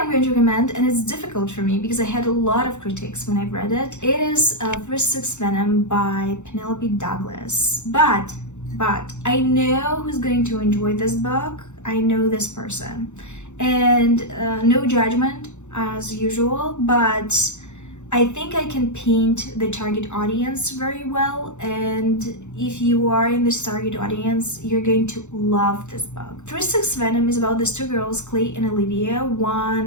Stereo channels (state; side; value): late; right; 0.83 ms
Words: I'm going to recommend, and it's difficult for me because I had a lot of critiques when I read it, it is Tryst Venom by Penelope Douglas. But I know who's going to enjoy this book. I know this person. And no judgment as usual, but I think I can paint the target audience very well, and if you are in this target audience, you're going to love this book. Tryst Venom is about these two girls, Clay and Olivia.